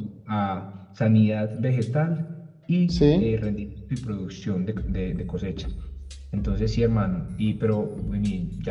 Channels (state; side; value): identical; both; correlation 1.00